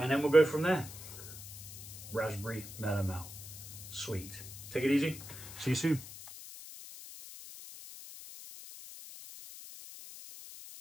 then we'll go from there. Raspberry melomel, sweet. Take it easy, see you soon.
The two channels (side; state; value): left; noise; hiss, 13 dB below the sound